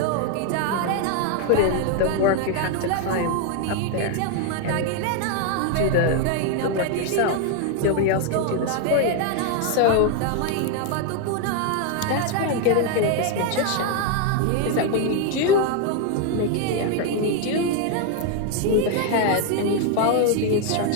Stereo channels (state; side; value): different; both; correlation 0.01